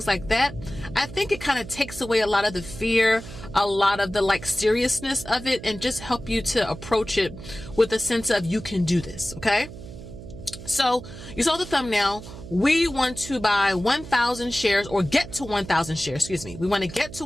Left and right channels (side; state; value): right; noise; hum, 14 dB below the sound